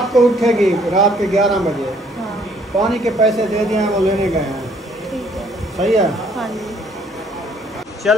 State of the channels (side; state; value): both; normal; correlation 0.63